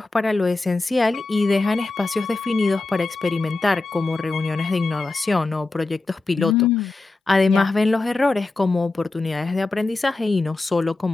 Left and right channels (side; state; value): right; quieter; 3.3 dB